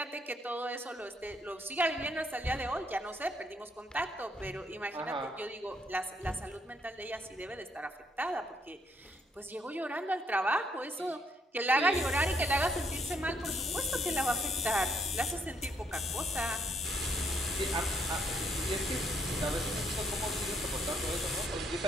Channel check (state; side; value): normal; both; correlation 0.71